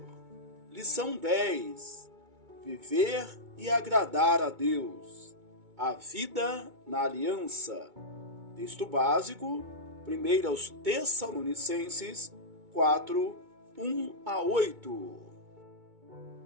Lição 10: Viver e agradar a Deus. A vida na aliança. Texto básico, 1 Tessalonicenses 4, 1 a 8.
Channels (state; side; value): late; left; 2.2 ms